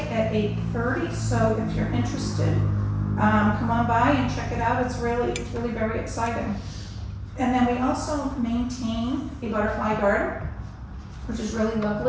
at 8:30. So if you're interested, come on by and check it out. It's really very exciting. And then we also maintain a butterfly garden. which is really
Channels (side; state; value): both; identical; correlation 1.00